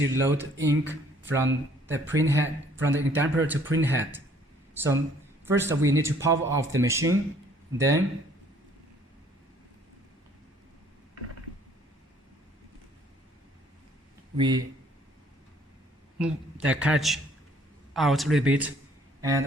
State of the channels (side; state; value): both; normal; correlation 0.60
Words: load ink from the print head, from the ink damper to print head. So first we need to power off the machine, then we move the cartridge out a little bit,